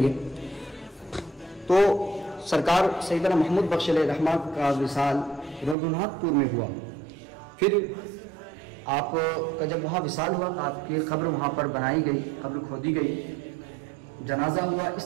گے. تو سرکار سیدنا محمود بخش علیہ الرحمہ کا وصال رگھوناتھ پور میں ہوا. پھر آپ کا جب وہاں وصال ہوا تو آپ کی قبر وہاں پر بنائی گئی, قبر کھودی گئی, جنازہ ہوا. اس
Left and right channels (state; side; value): drops out; left; at 5.8 s